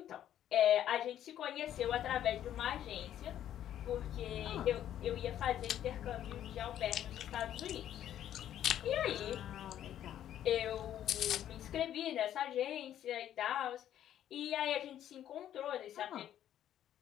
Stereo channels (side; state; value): right; quieter; 11.1 dB